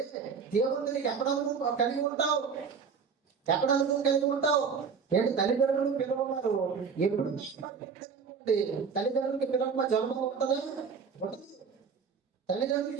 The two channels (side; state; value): left; quieter; 5.9 dB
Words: దేవుడితో నీకు ఎక్కడ అనుభవం కలిగి ఉంటావు? ఏంటి? తల్లిదండ్రులు పిల్లలు ఉన్నారు, ఎప్పుడు తల్లిదండ్రులకి పిల్లల జన్మ ఉంటుందా? ఉండదు.